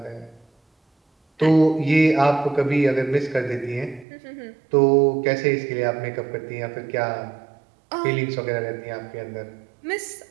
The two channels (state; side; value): drops out; left; at 4.0 s